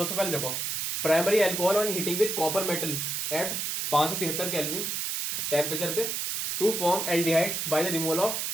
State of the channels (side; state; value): right; noise; hiss, 1 dB below the sound